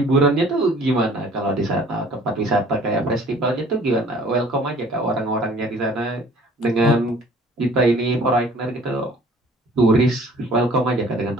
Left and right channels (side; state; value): both; normal; correlation 0.53